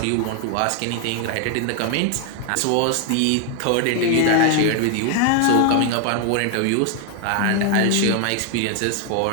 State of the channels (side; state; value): both; different; correlation 0.00